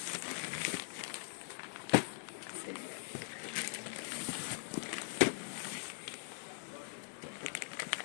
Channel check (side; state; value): right; silent; digital silence